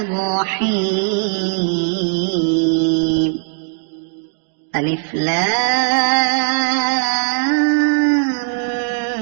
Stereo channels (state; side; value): silent; left; digital silence